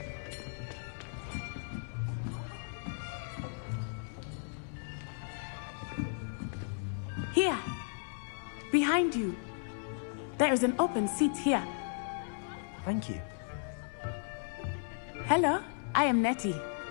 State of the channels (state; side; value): silent; right; 54 dB below the other